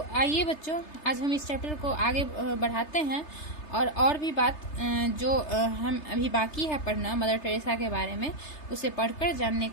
आइए बच्चों, आज हम इस चैप्टर को आगे बढ़ाते हैं और भी बात जो हम अभी बाकी है पढ़ना मदर टेरेसा के बारे में, उसे पढ़कर जानने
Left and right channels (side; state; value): right; late; 3.3 ms